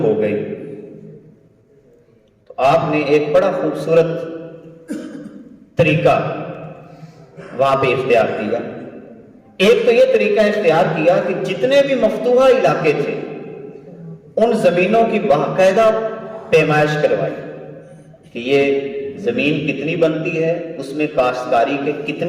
گئی، تو آپ نے ایک بڑا خوبصورت طریقہ وہاں پہ اختیار کیا۔ ایک تو یہ طریقہ اختیار کیا کہ جتنے بھی مفتوحہ علاقے تھے ان زمینوں کی باقاعدہ پیمائش کروائی کہ یہ زمین کتنی بنتی ہے، اس میں کاشتکاری کے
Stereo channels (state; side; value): identical; both; correlation 1.00